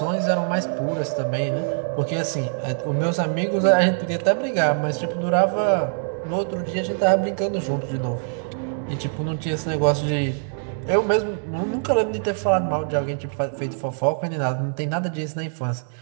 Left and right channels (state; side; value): silent; left; digital silence